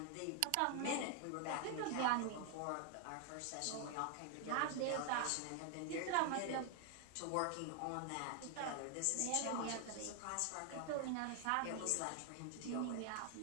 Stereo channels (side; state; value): both; different; correlation 0.00